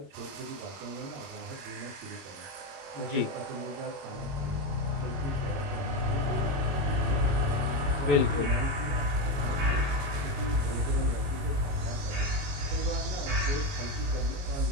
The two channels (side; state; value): left; late; 22 ms